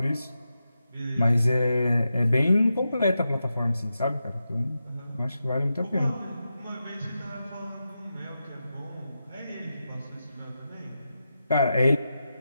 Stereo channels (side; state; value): both; inverted; correlation -0.89